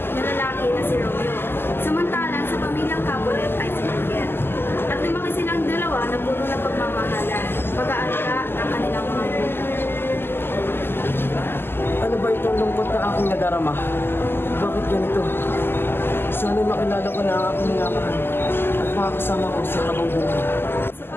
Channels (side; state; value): right; late; 0.11 ms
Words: na lalaki na si Romeo, samantalang sa pamilyang Capulet ay si Juliet. At lumaki silang dalawa na puno ng pagmamahalan, pag-aalaga ng kanilang mga anak. Ano ba itong lungkot na aking nadarama? Bakit ganito? Sana makilala ko na ang aking minamahal at makakasama ko sa habang buhay. Sa